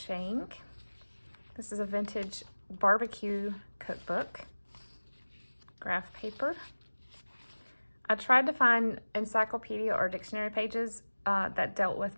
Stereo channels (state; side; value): inverted; both; correlation -1.00